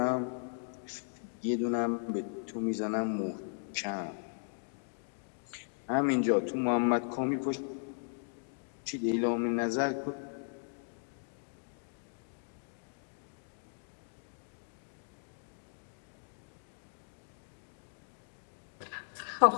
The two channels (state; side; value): silent; right; digital silence